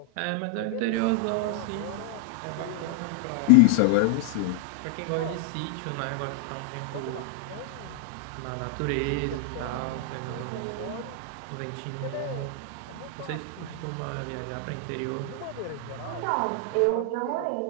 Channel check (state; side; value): different; both; correlation 0.00